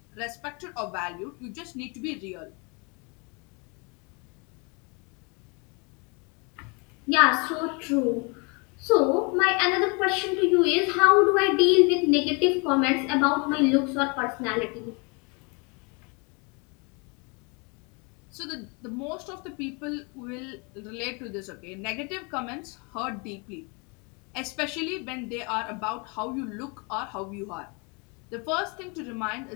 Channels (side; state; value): right; quieter; 32.1 dB